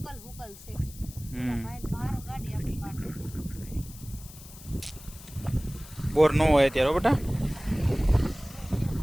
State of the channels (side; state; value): left; noise; hiss, 18 dB below the sound